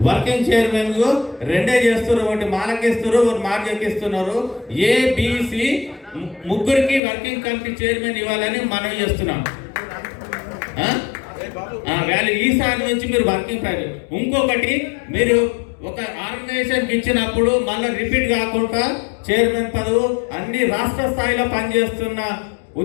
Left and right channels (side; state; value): right; drops out; at 7.0 s